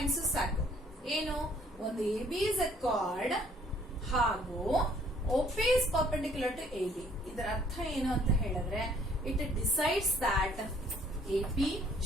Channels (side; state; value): both; normal; correlation 0.61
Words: ಸಾಕು. ಏನು? ಒಂದು AB is a chord ಹಾಗೂ OP is perpendicular to AB. ಇದರ ಅರ್ಥ ಏನು ಅಂತ ಹೇಳಿದ್ರೆ, it decides that AP